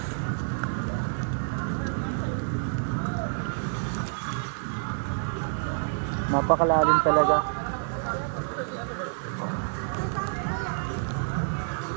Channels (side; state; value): left; silent; digital silence